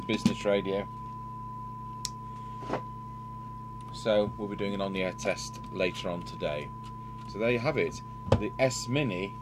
business radio. So we'll be doing an on-the-air test later on today. So there you have it, the S Mini,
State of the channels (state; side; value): identical; both; correlation 1.00